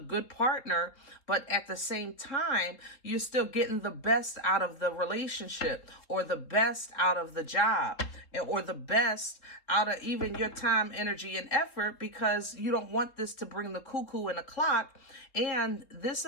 partner. But at the same time, you're still getting the best out of the relationship, or the best out of the job, or the best out of even your time, energy, and effort, because you don't want this to bring the cuckoo in the clock. And this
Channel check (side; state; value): right; late; 3.7 ms